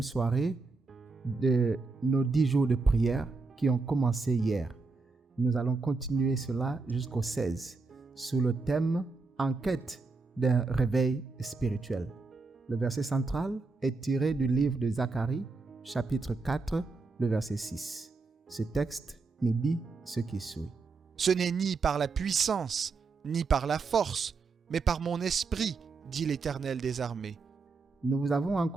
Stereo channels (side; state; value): left; quieter; 4.1 dB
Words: soirée de nos 10 jours de prière qui ont commencé hier. Nous allons continuer cela jusqu'au 16 sous le thème « En quête d'un réveil spirituel ». Le verset central est tiré du livre de Zacharie, chapitre 4, le verset 6. Ce texte nous dit ce qui suit. Ce n'est ni par la puissance, ni par la force, mais par mon esprit, dit l'Éternel des armées. Nous vous avons